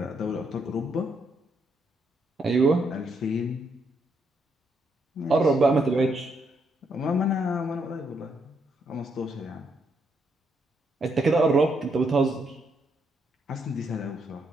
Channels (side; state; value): both; normal; correlation 0.76